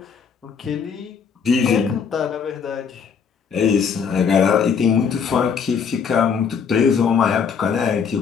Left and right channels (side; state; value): right; quieter; 6.5 dB